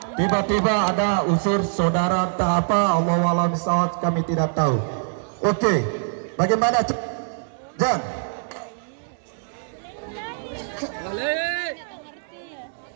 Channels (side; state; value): left; silent; digital silence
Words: Tiba-tiba ada unsur saudara entah apa, Allahualam bishawab, kami tidak tahu. Oke, bagaimana? Jan.